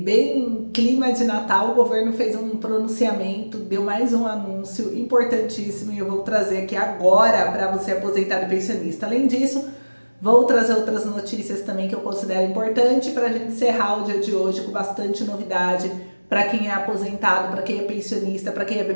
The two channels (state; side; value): inverted; both; correlation -1.00